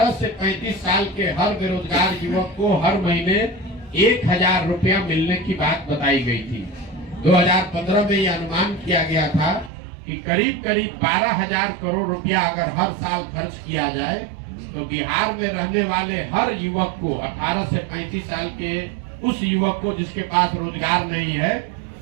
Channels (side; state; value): left; drops out; at 9.7 s